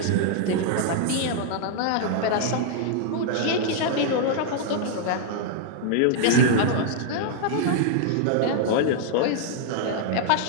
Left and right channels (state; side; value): different; both; correlation -0.01